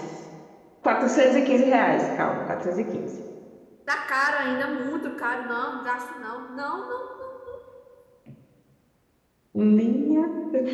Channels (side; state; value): both; identical; correlation 1.00